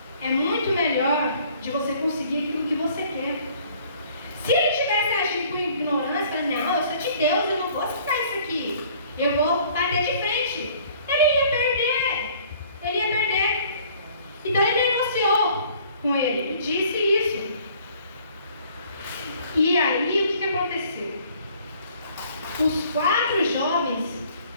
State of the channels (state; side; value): inverted; both; correlation -0.56